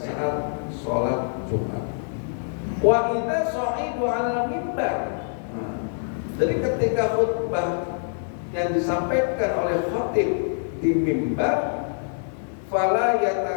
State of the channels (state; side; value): silent; right; digital silence